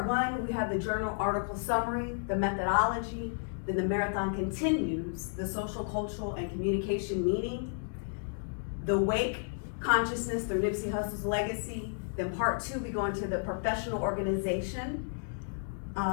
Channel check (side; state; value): right; silent; digital silence